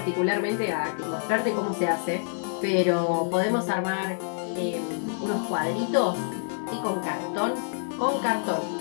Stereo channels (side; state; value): right; silent; digital silence